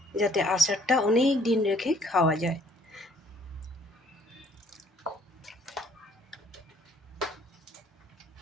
যাতে আচারটা অনেক দিন রেখে খাওয়া যায়।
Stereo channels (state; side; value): normal; both; correlation 0.61